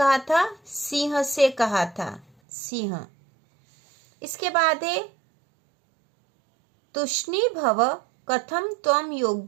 था, सिंह से कहा था, सिंह। इसके बाद है तुष्णी भव कथम त्वम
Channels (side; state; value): left; drops out; at 2.2 s